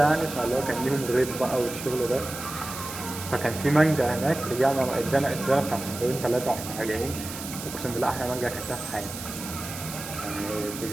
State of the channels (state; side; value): noise; right; hiss, 10 dB below the sound